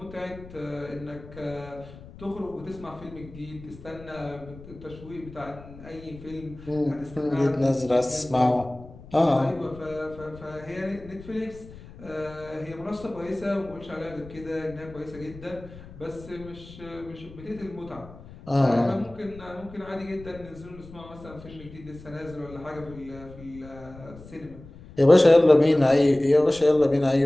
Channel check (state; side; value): noise; left; rumble, 18 dB below the sound